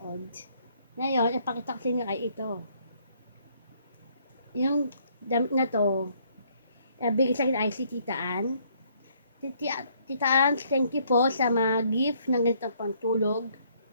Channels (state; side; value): inverted; both; correlation -0.66